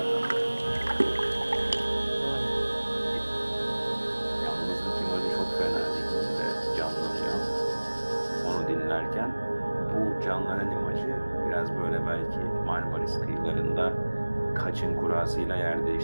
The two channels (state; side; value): inverted; both; correlation -1.00